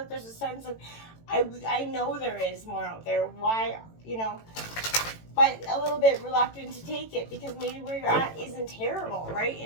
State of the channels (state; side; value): late; right; 18 ms